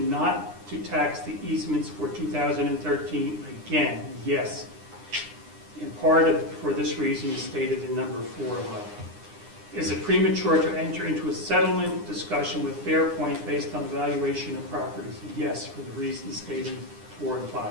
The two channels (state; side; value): late; left; 9.8 ms